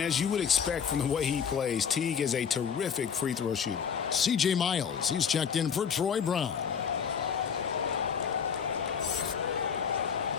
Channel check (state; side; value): quieter; right; 7.0 dB